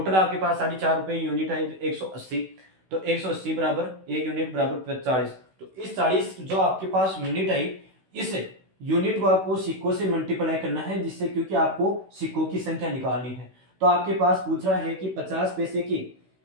आपके पास 4.5 रुपए यूनिट है 180, तो 180 बराबर 1 यूनिट बराबर 40। तो इस 40 जो आपके पास यूनिट आई, इस यूनिट को आपको सिक्कों से मल्टीप्लाई करना है, जिससे क्योंकि आपको सिक्कों की संख्या निकालनी है। तो आपके पास पूछ रहा है कि 50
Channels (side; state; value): left; late; 16 ms